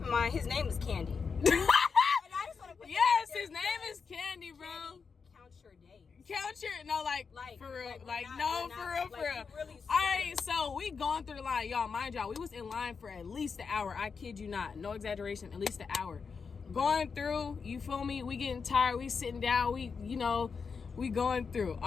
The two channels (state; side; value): quieter; right; 5.5 dB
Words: in mind his name is Candy. And I just wanna put his name is Candy, bro. Candy, count your days. Count your for real, for real. Really All right, so we going through the line, y'all. Mind y'all, we was in line for at least an hour. I kid you not, no exaggeration, at least an hour. Going through, you feel me? We getting tired. We sitting down. We going through.